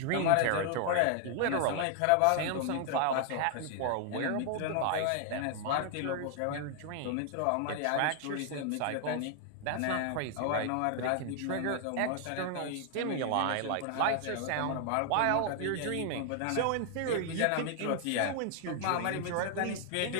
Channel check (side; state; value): both; different; correlation 0.00